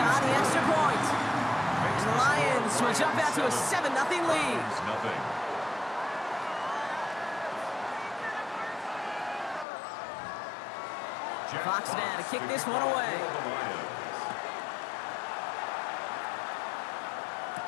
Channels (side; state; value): right; drops out; at 9.7 s